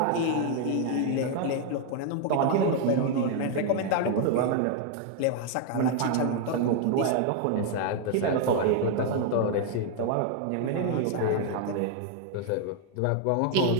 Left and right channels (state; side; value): different; both; correlation 0.00